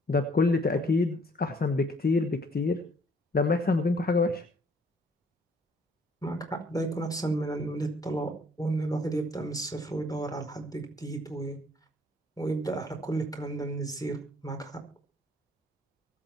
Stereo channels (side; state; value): both; normal; correlation 0.62